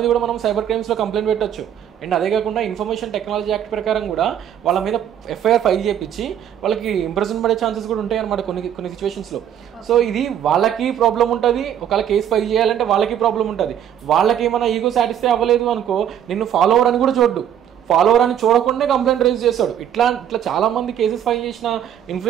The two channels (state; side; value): quieter; left; 9.8 dB